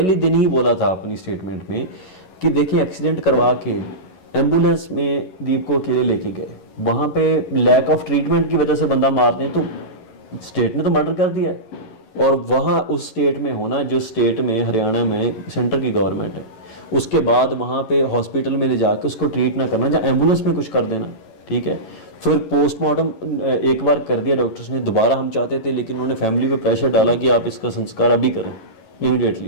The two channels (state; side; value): late; right; 11 ms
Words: दिन ही बोला था अपनी स्टेटमेंट में कि देखिए एक्सीडेंट करवा के एम्बुलेंस में दीप को अकेले लेके गए, वहाँ पे लैक ऑफ ट्रीटमेंट की वजह से बंदा मार दें तो स्टेट ने तो मर्डर कर दिया है। और वहाँ उस स्टेट में होना, जो स्टेट में हरियाणा में सेंटर की गवर्नमेंट है, उसके बाद वहाँ पे हॉस्पिटल में ले जाके उसको ट्रीट ना करना, या एम्बुलेंस में कुछ कर देना, ठीक है? फिर पोस्टमार्टम एक बार कर दिया डॉक्टर्स ने, दोबारा हम चाहते थे लेकिन उन्होंने फैमिली पे प्रेशर डाला कि आप इसका संस्कार अभी करें